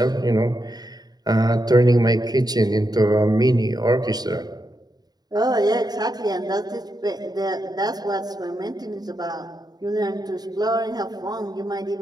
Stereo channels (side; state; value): left; late; 0.19 ms